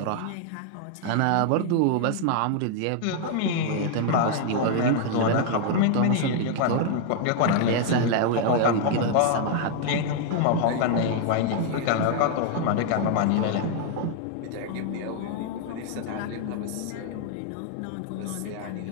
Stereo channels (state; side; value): different; both; correlation 0.00